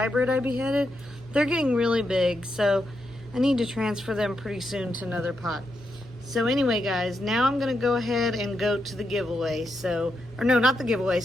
I beheaded. They're getting really big, so I need to transfer them pretty soon to another pot. So anyway, guys, now I'm going to go ahead and go to the giveaway. So, or no, not the giveaway.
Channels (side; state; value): both; normal; correlation 0.83